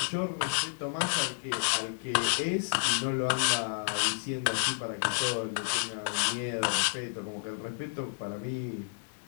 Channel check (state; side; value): silent; right; 57 dB below the other